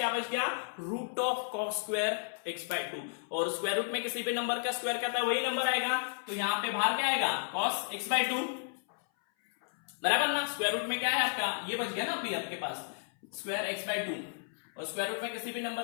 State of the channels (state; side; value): silent; right; 56 dB below the other